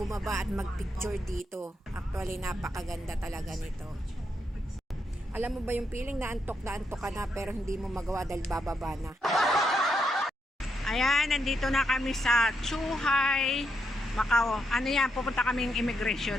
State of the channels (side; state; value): both; normal; correlation 0.80